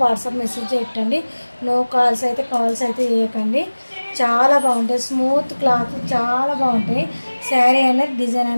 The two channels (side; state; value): both; inverted; correlation -1.00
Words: వాట్సాప్ మెసేజ్ పెట్టండి. నో కాల్స్ అయితే చేయకండి. చాలా బాగుంటాయి. స్మూత్ క్లాత్ చాలా బాగుంటాయి. శారీ అనేది డిజైన్